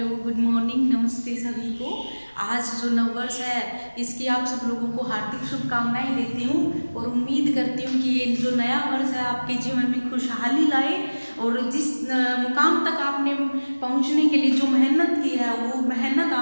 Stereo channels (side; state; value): both; inverted; correlation -1.00